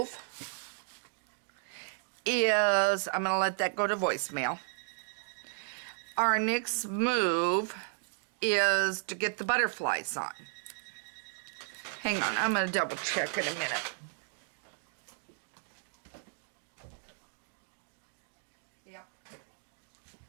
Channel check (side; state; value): left; silent; 55 dB below the other